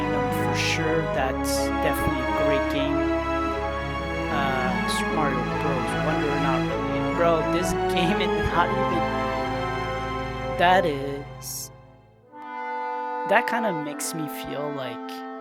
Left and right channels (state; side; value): identical; both; correlation 1.00